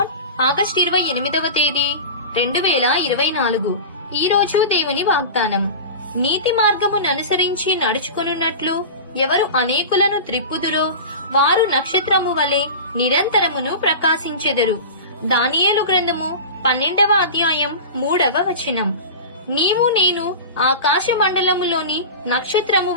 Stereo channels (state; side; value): inverted; both; correlation -0.30